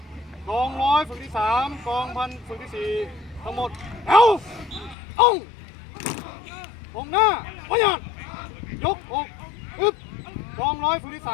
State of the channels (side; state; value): right; drops out; at 5.0 s